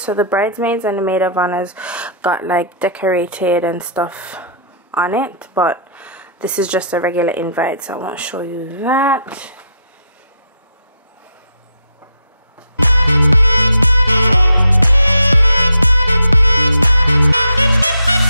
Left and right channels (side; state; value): both; inverted; correlation -0.66